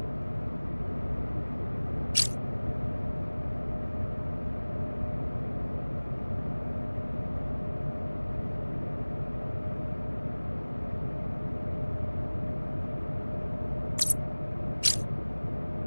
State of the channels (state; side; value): inverted; both; correlation -1.00